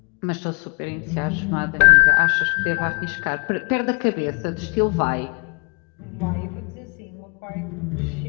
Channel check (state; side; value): quieter; right; 37.3 dB